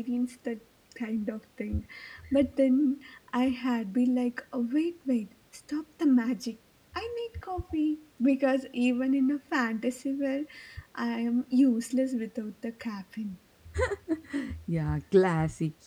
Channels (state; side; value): identical; both; correlation 1.00